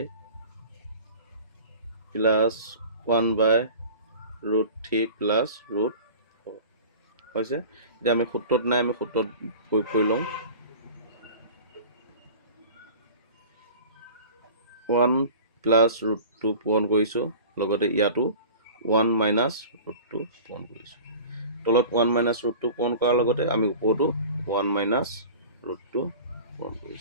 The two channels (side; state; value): both; inverted; correlation -0.40